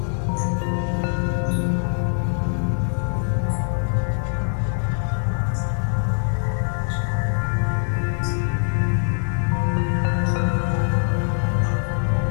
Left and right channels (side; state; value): right; silent; 64 dB below the other